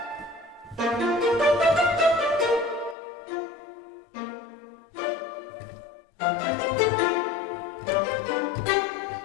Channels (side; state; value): right; drops out; at 3.0 s